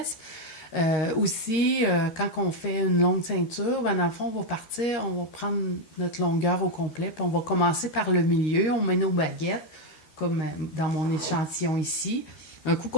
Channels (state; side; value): late; right; 13 ms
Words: Quand on fait une longue ceinture, ben, dans le fond, on va partir, on va prendre notre longueur au complet, puis on va commencer par le milieu. On met nos baguettes, comme dans mon échantillon ici. Un coup